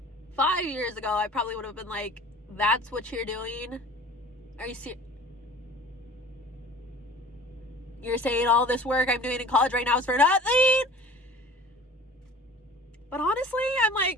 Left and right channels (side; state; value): both; normal; correlation 0.44